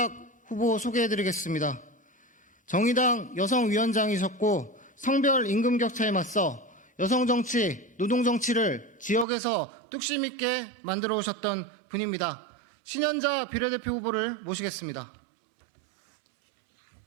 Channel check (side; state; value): left; drops out; at 9.2 s